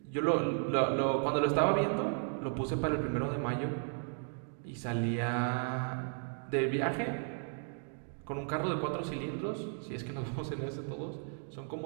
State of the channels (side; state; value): left; silent; 55 dB below the other